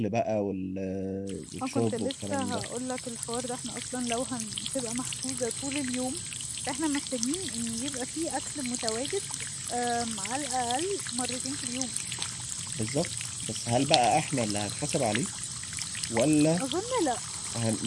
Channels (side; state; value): both; identical; correlation 1.00